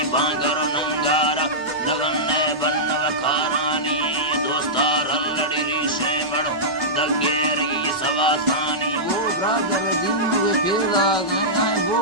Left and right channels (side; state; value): left; noise; hum, 29 dB below the sound